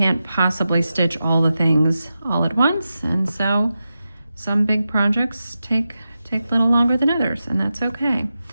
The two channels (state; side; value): inverted; both; correlation -0.91